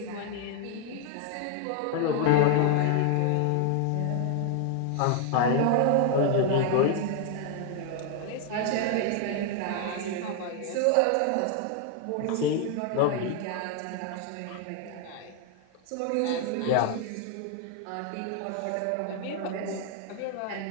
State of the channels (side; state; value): both; different; correlation 0.00